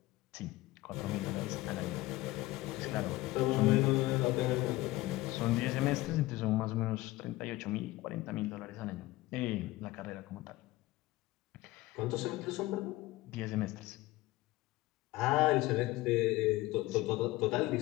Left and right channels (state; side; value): quieter; right; 18.6 dB